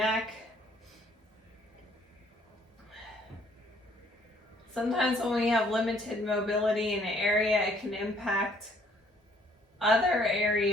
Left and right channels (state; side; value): normal; both; correlation 0.62